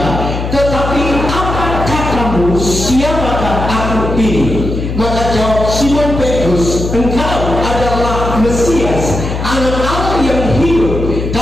tetapi apa katamu, siapakah aku ini? Maka jawab Simon Petrus, engkau adalah Mesias, Anak Allah yang hidup.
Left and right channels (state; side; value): noise; left; hum, 4 dB below the sound